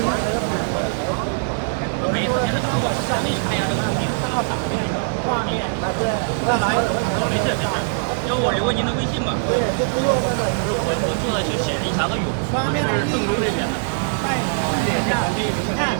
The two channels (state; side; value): silent; left; digital silence